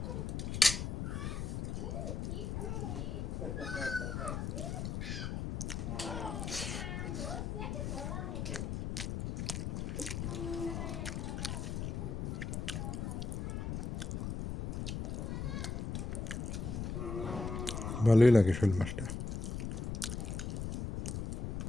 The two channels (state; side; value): noise; left; rumble, 3 dB below the sound